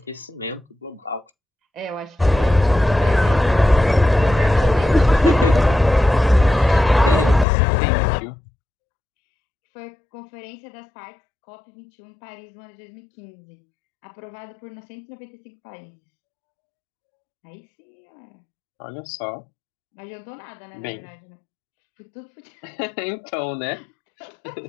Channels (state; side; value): drops out; right; at 7.5 s